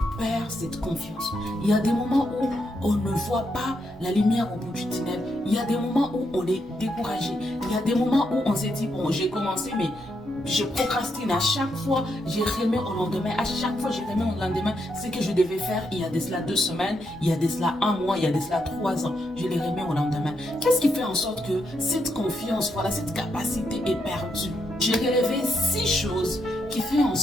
perd cette confiance. Il y a des moments où on ne voit pas la lumière au bout du tunnel. Il y a des moments où on est découragé. Il y a des moments où on s'est dit, bon, j'ai commencé, mais je procrastine à chaque fois, j'ai remis au lendemain, à chaque fois j'ai remis au lendemain ce que je devais faire il y a de cela 2 semaines, il y a de cela 1 mois, il y a de cela 3 ans, je les remets au lendemain. Qu'est-ce qui fait en sorte que cette confiance, voilà, cette capacité est perdue? J'ai relevé 6 choses qui font en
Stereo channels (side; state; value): both; normal; correlation 0.80